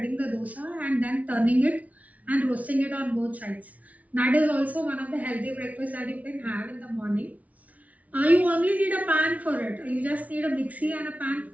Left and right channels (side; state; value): left; late; 0.070 ms